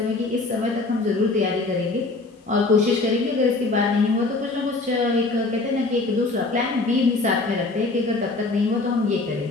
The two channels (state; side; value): quieter; right; 3.4 dB